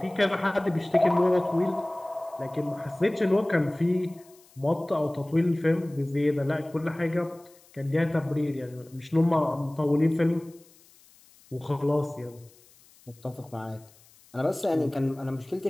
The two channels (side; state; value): left; noise; hiss, 28 dB below the sound